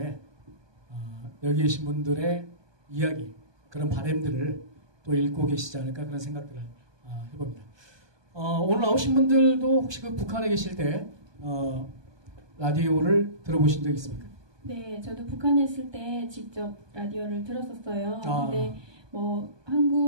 여기 계신 분들의 이야기 그런 바람들을 또 읽고 계시지 않을까 그런 생각들을 해봅니다. 오늘 나오신 분들도 혹시 그 북한에 계실 때 라디오를 들어보신 적 있습니까? 네, 저도 북한에 있을 때 직접 라디오를 들었었어요. 근데 뭐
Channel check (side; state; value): left; late; 1.2 ms